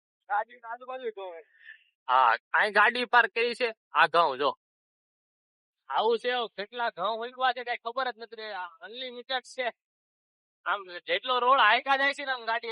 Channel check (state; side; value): identical; both; correlation 1.00